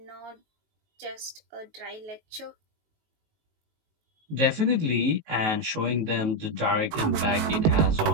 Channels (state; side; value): late; left; 18 ms